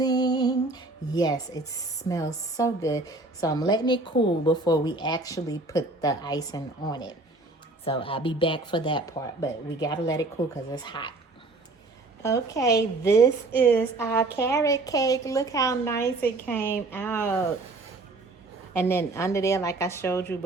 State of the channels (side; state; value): left; quieter; 3.1 dB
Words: Yes, it smells so good. So I'm letting it cool before we actually put the icing on it. So I'll be back for that part, but we got to let it cool because it's hot. Okay, this is our carrot cake. Look how nice it came out. And then under there, like I showed you